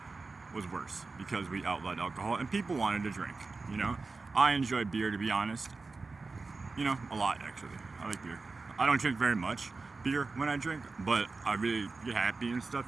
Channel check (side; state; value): left; quieter; 3.9 dB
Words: was worse because we outlawed alcohol and people wanted to drink. You know, I enjoy beer, to be honest. You know, a lot actually. I like beer. I don't drink very much beer when I drink, but I really get happy and stuff,